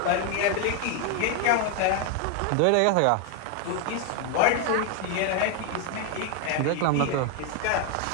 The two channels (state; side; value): different; both; correlation 0.01